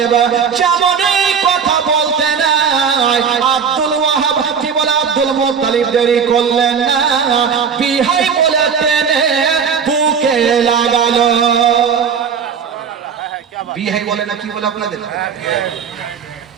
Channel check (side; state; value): left; quieter; 6.6 dB